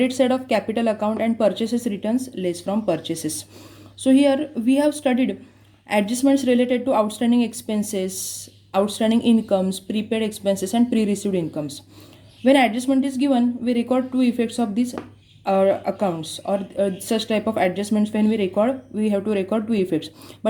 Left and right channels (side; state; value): both; identical; correlation 1.00